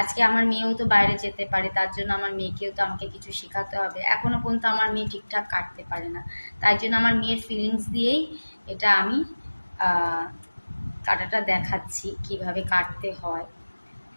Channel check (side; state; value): both; inverted; correlation -1.00